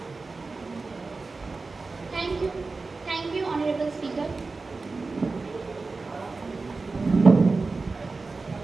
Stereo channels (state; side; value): quieter; left; 3.9 dB